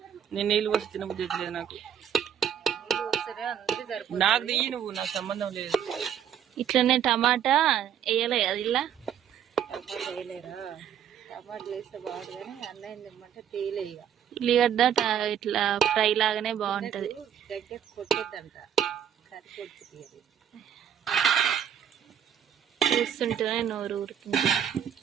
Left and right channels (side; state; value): left; quieter; 9.1 dB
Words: నేను నీళ్ళు పోసి తినబుద్ధి లేదు నాకు. నాకు తీయి నువ్వు, నాకు సంబంధం లేదు. ఇట్లనే టమాటా వేయలే అది ఇలా ఉల్లిగడ్డ ఇట్లా ఫ్రై లాగానే బాగుంటది. చూస్తుంటేనే నోరు ఊరుతుంది.